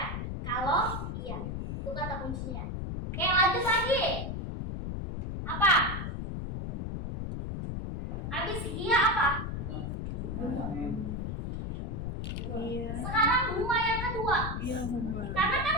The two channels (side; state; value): left; noise; rumble, 4 dB below the sound